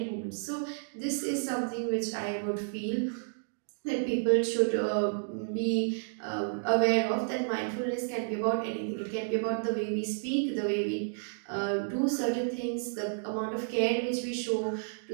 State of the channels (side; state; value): left; silent; digital silence